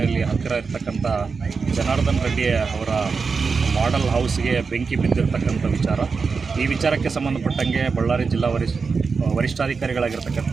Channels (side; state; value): left; quieter; 5.0 dB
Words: ಹತ್ತಿರ ಇರ್ತಕ್ಕಂಥ ಜನಾರ್ದನ್ ರೆಡ್ಡಿ ಅವರ ಮಾಡೆಲ್ ಹೌಸ್ಗೆ ಬೆಂಕಿ ಬಿದ್ದಿರ್ತಕ್ಕಂಥ ವಿಚಾರ. ಈ ವಿಚಾರಕ್ಕೆ ಸಂಬಂಧಪಟ್ಟಂಗೆ ಬಳ್ಳಾರಿ ಜಿಲ್ಲಾ ವರಿಷ್ಠಾಧಿಕಾರಿಗಳಾಗಿರ್ತಕ್ಕಂಥ